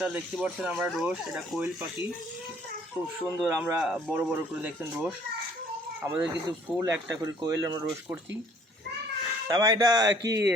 দেখতে পাচ্ছেন আমরা রোজ, এটা কোয়েল পাখি, খুব সুন্দর। আমরা বড় বড় করে দেখছেন রোজ, আমাদের কিন্তু ফুল একটা করে কোয়েল আমরা রোজ করছি। তারপর এটা কি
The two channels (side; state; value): both; normal; correlation 0.58